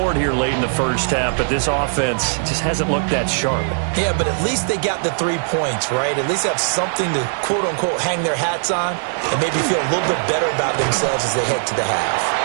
here late in the first half, but this offense just hasn't looked that sharp. Yeah, but at least they got the 3 points, right? At least have something to, quote-unquote, hang their hats on and maybe feel a little bit better about themselves as they head to the half.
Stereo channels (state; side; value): silent; left; digital silence